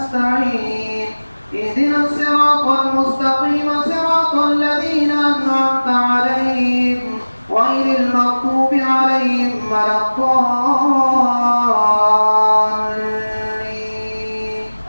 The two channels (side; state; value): both; inverted; correlation -1.00